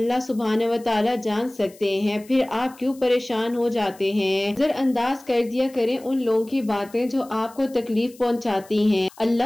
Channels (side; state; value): left; noise; hiss, 24 dB below the sound